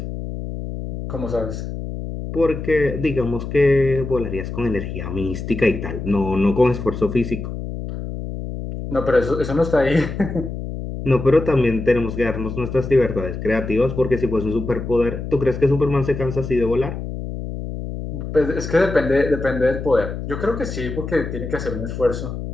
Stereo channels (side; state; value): left; noise; hum, 7 dB below the sound